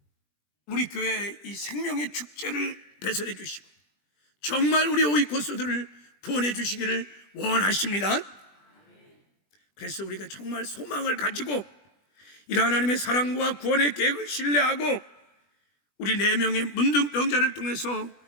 우리 교회의 이 생명의 축제를 배설해 주시고 정말 우리 오이코스들을 구원해 주시기를 원하십니다. 그래서 우리가 정말 소망을 가지고 이러한 하나님의 사랑과 구원의 계획을 신뢰하고 우리 4명의 문둥병자를 통해서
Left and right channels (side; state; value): right; late; 20 ms